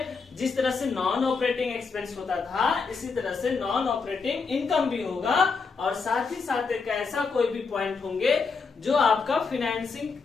जिस तरह से नॉन ऑपरेटिंग एक्सपेंस होता था, इसी तरह से नॉन ऑपरेटिंग इनकम भी होगा, और साथ ही साथ एक ऐसा कोई भी पॉइंट होंगे जो आपका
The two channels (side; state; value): right; quieter; 4.9 dB